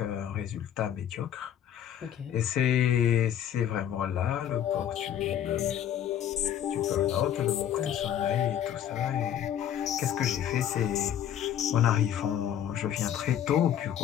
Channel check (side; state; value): right; quieter; 10.2 dB